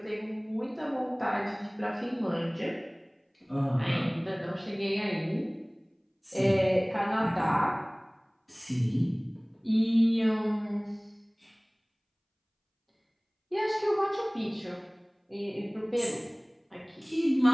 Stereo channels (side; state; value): both; identical; correlation 1.00